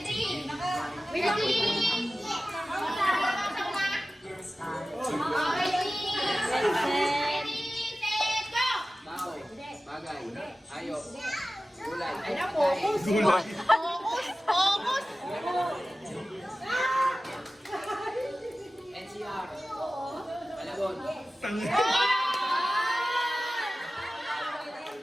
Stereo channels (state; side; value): normal; both; correlation 0.96